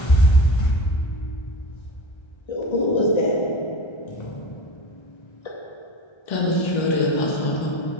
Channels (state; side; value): late; right; 1.3 ms